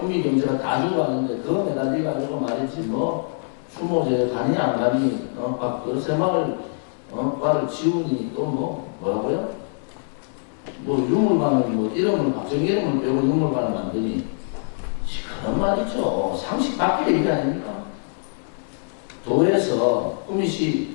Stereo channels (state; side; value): silent; right; digital silence